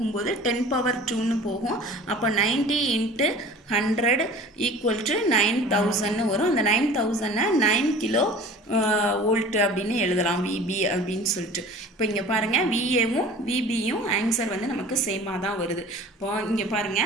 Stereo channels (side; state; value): both; normal; correlation 0.43